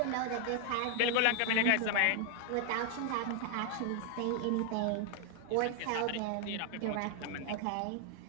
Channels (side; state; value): both; different; correlation 0.00